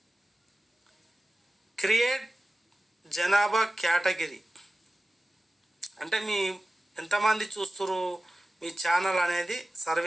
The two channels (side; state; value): both; normal; correlation 0.96